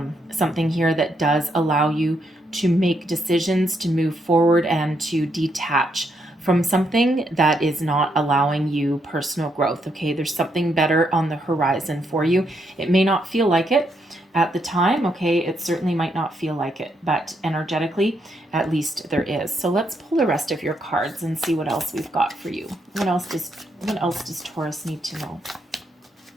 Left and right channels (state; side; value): normal; both; correlation 0.77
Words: something here that does allow you to make decisions, to move forward, and to detach from something that is not allowing you personal growth, okay? There's something better on the horizon for you. It may not feel like it at the time, okay? It certainly might not feel like it, but energetically, at least there is. So let's pull the rest of your cards and see what else we've got for you. What else does Taurus need to know?